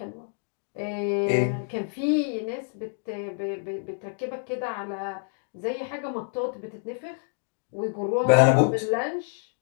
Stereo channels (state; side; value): silent; right; 60 dB below the other